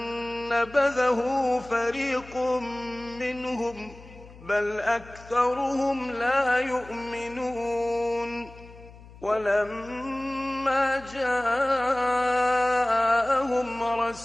نبذه فريق منهم بل أكثرهم لا يؤمنون ولما جاءهم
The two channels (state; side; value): noise; left; hum, 20 dB below the sound